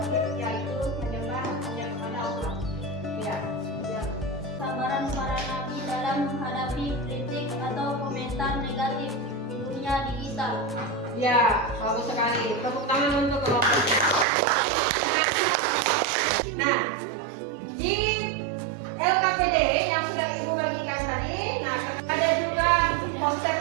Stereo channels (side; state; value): left; drops out; at 14.2 s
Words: yaitu menyembah hanya kepada Allah. Ya. Sabaran para nabi dalam menghadapi kritik atau komentar negatif di dunia digital. Ya, bagus sekali. Tepuk tangan untuk kelompok. Nah, di LKPD yang sudah Ibu bagikan tadi, nah ada juga